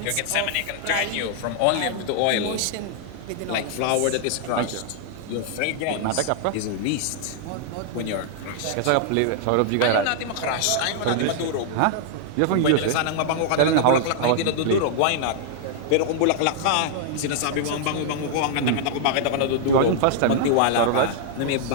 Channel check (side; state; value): both; different; correlation -0.01